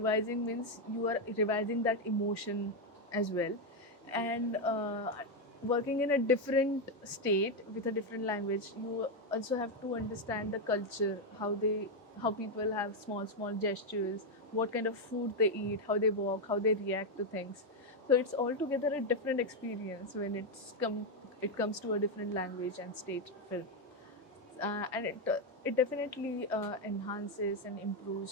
means you are revising that emotion as well, and working in a different state with a different language, you also have to understand the culture, how people have small gestures, what kind of food they eat, how they walk, how they react to things. So it's altogether a different experience when it comes to a different language and state film, and it definitely enhances and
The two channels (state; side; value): normal; both; correlation 0.05